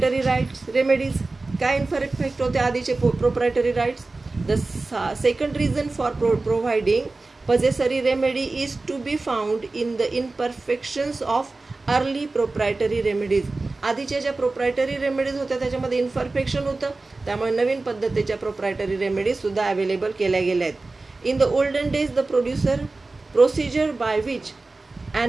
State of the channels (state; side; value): quieter; left; 3.4 dB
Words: rights remedies. काय इनपरफेक्ट होते आधीचे proprietary rights. The second reason for providing possessory remedy is to be found in the imperfections of early proprietary remedies. आधीच्या ज्या प्रोप्रायटरी रेमेडीज होत्या त्याच्यामध्ये इन्परफेक्शन होतं, त्यामुळे नवीन पद्धतीच्या प्रोप्रायटरी रेमेडीज सुद्धा अवेलेबल केल्या गेल्या आहेत. In the olden days the procedure by which